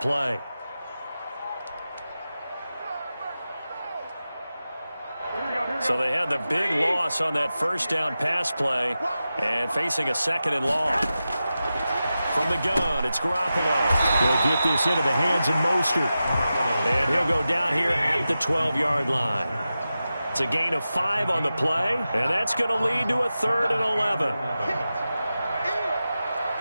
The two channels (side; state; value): both; inverted; correlation -0.93